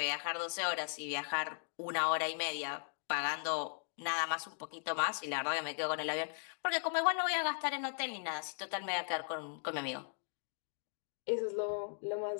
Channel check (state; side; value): silent; right; digital silence